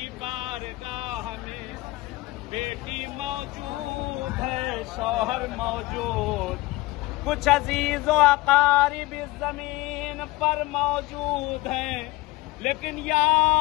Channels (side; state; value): right; quieter; 20.0 dB